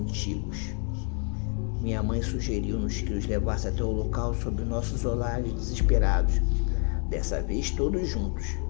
Minha mãe sugeriu-nos que os levasse até o local sob nossos olhares desesperados, dessa vez todos juntos.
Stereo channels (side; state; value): right; quieter; 39.2 dB